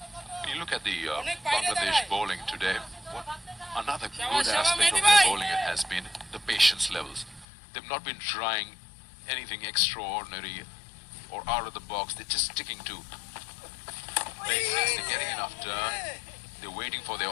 When you look at the Bangladesh bowling today, what another good aspect of their bowling has been the patience levels. They've not been trying anything extraordinary or out of the box. They're just sticking to basics. They're getting enough turn. They're waiting for their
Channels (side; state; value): right; drops out; at 7.5 s